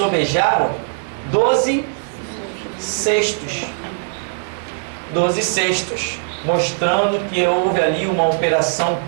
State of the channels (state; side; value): silent; left; 66 dB below the other